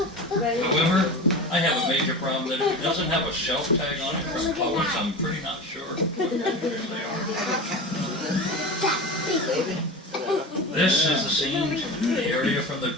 However, I have a major problem that if it doesn't have a shelf tag on it from Publix, I'm pretty not sure what fish they are. This is the scene, the area from the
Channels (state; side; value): normal; both; correlation 0.29